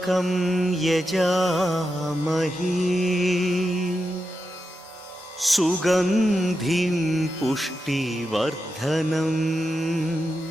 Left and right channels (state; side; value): normal; both; correlation 0.88